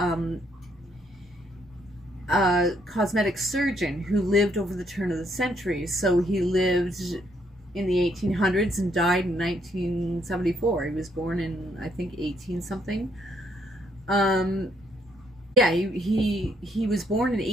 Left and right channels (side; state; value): both; normal; correlation 0.71